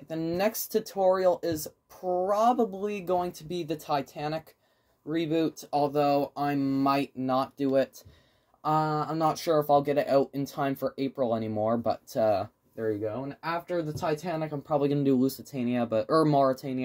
The next tutorial is probably going to be the Titanic reboot, although I might not do it. I'm not sure if I'll get it out in time for April anymore, but there you go. And after the Titanic, I'm probably going to do Lusitania, or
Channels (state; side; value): identical; both; correlation 1.00